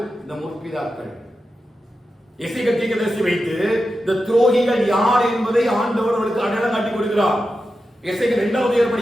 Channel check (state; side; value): normal; both; correlation 0.90